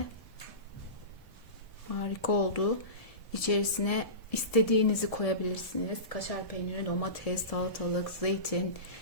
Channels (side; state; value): right; late; 1.7 ms